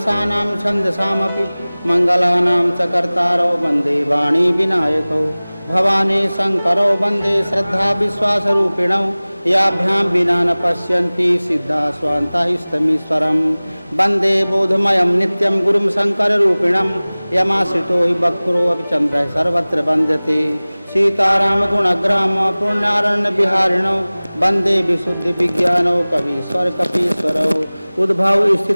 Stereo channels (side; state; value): both; inverted; correlation -0.99